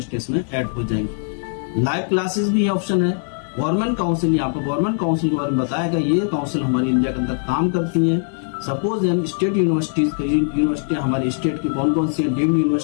में ऐड हो जाएंगे। लाइव क्लासेस भी ऑप्शन है। गवर्नमेंट काउंसिल, यहाँ पर गवर्नमेंट काउंसिल के बारे में बताया गया। ये काउंसिल हमारी इंडिया के अंदर काम करती है। सपोज हम स्टेट यूनिवर्सिटी हमारी स्टेट की कौन कौन सी है, डीम्ड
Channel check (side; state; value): right; silent; digital silence